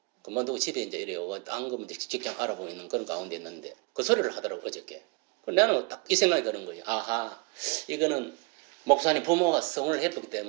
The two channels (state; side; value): quieter; left; 30.1 dB